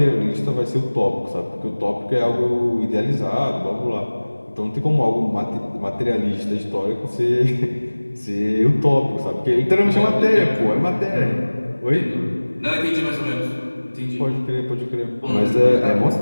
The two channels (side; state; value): both; inverted; correlation -1.00